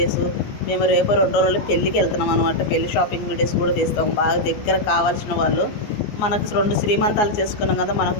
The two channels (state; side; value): late; right; 14 ms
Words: మేము రేపు 2 రోజులు పెళ్ళికి వెళ్తున్నాం అనమాట. పెళ్లి షాపింగ్ వీడియోస్ కూడా తీస్తాం. బాగా దగ్గర కావాల్సిన వాళ్ళు, మనకు 2 శ్రీమంతాలు చేసుకున్నాం కదా, మనకు